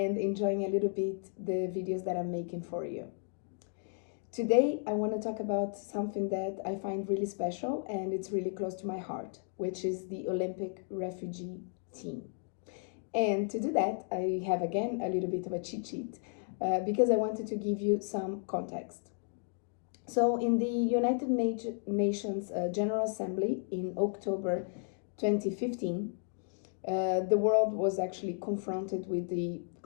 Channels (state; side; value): silent; right; 55 dB below the other